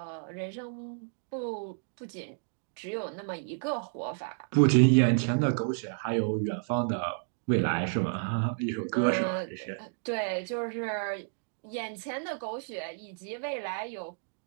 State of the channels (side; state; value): left; silent; digital silence